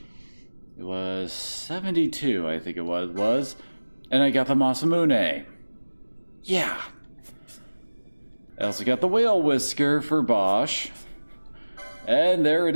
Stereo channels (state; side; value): inverted; both; correlation -1.00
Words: It was 72, I think it was. And I got the Masamune. Yeah. I also got the Whale Whisker for Bosch. And there